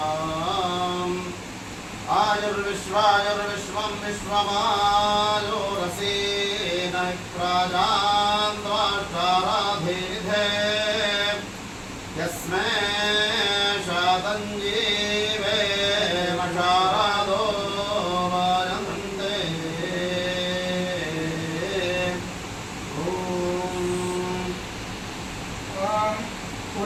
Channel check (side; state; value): both; identical; correlation 1.00